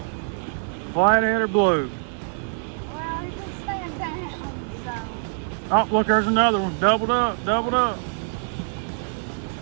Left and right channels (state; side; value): silent; left; 62 dB below the other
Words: Flathead or blue? Well, he can stand down, so. Oh, look, there's another one. Doubled up, doubled up.